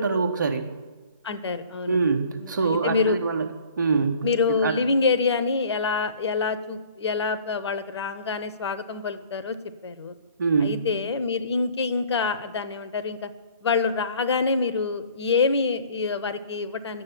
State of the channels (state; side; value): inverted; both; correlation -0.51